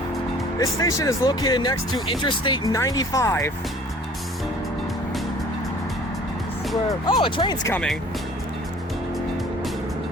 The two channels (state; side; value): normal; both; correlation 0.50